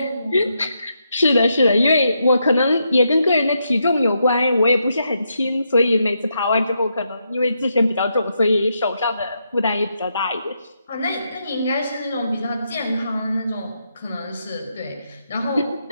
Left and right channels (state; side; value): inverted; both; correlation -0.81